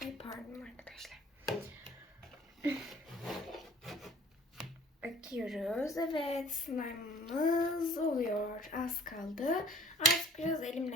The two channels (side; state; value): both; normal; correlation 0.52